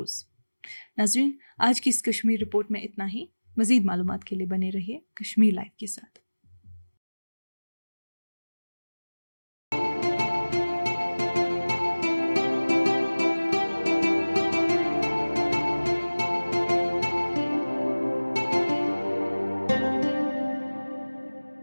नाज़रीन, आज की इस कश्मीर रिपोर्ट में इतना ही। मज़ीद मालूमात के लिए बने रहिए कश्मीर लाइव के साथ।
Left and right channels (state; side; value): inverted; both; correlation -1.00